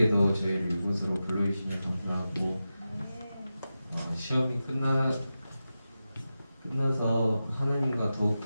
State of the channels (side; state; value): both; inverted; correlation -0.92